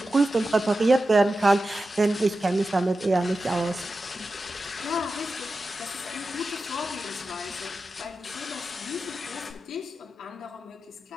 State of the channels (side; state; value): both; normal; correlation 0.92